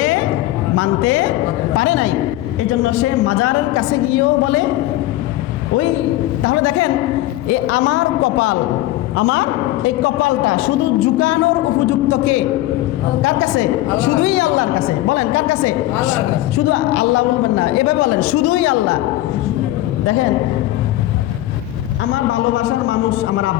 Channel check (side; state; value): right; quieter; 16.0 dB